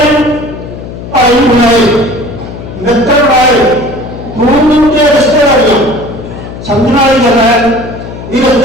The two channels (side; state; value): left; noise; hum, 11 dB below the sound